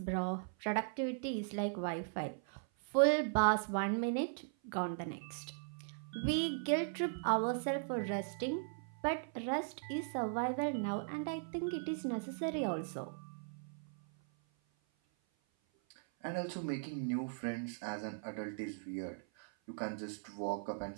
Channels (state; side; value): silent; left; 52 dB below the other